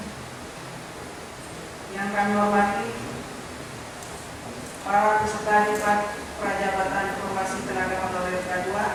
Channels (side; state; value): both; identical; correlation 1.00